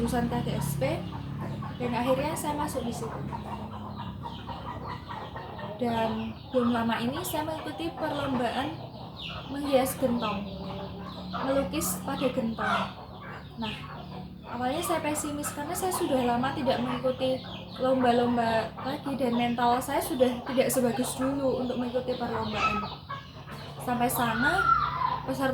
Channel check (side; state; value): both; identical; correlation 1.00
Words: KGSP dan akhirnya saya masuk di situ. Dan belum lama ini saya mengikuti perlombaan menghias gentong, melukis pada gentong. Nah, awalnya saya pesimis karena saya sudah lama tidak mengikuti lomba-lomba lagi dan mental saya sudah tidak sebagus dulu untuk mengikuti perlombaan. Sampai sana